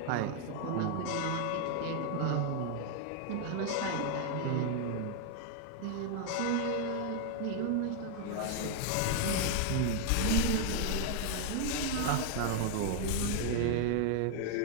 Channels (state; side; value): different; both; correlation 0.00